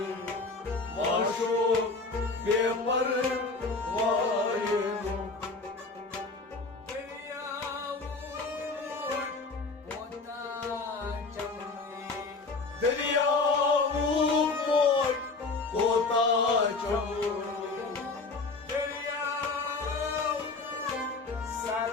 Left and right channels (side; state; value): right; quieter; 3.8 dB